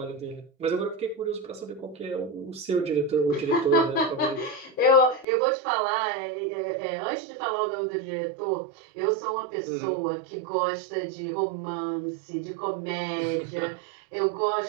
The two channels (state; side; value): drops out; left; at 5.2 s